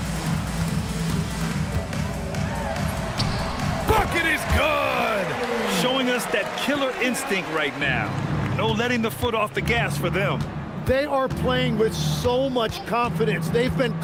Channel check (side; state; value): both; identical; correlation 1.00